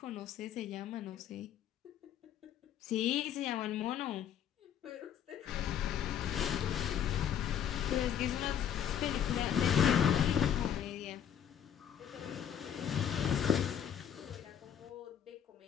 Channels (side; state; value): right; quieter; 9.3 dB